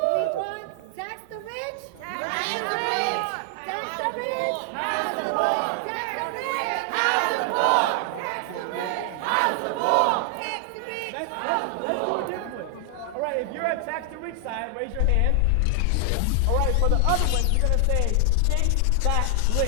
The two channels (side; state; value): both; different; correlation 0.00